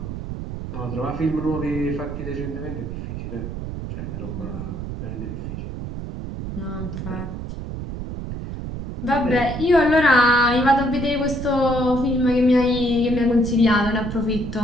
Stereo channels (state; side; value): noise; right; rumble, 7 dB below the sound